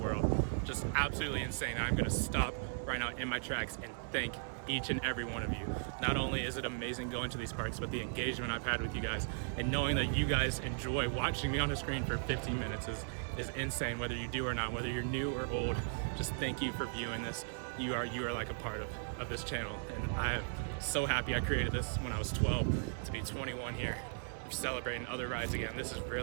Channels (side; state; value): left; silent; digital silence